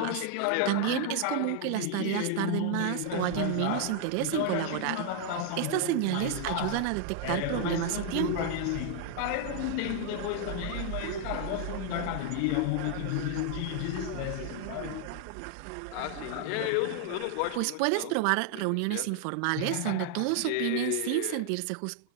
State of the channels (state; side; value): different; both; correlation 0.00